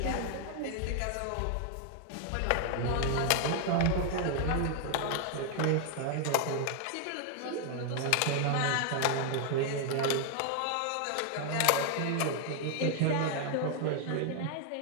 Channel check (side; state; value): both; different; correlation 0.00